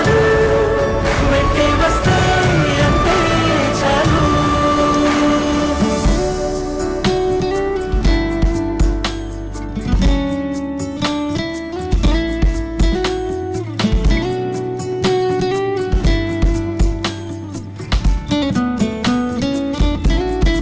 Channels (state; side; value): identical; both; correlation 1.00